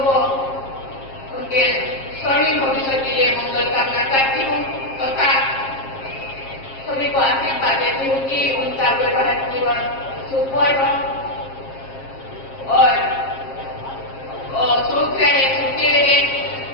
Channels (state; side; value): late; right; 7.5 ms